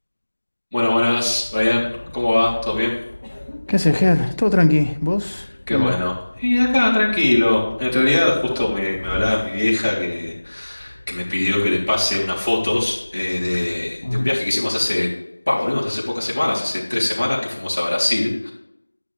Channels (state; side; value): inverted; both; correlation -1.00